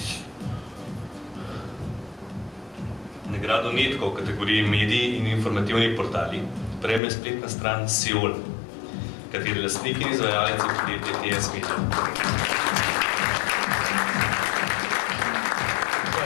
Nagrado Netko v kategoriji mediji in informativni portali prejme spletna stran Seoul, kateri lastnik in izvajalec je podjetje TS Media.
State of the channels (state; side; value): drops out; right; at 7.0 s